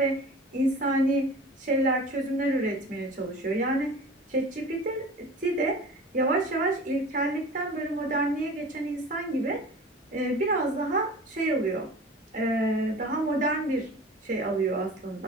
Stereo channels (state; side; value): normal; both; correlation 0.39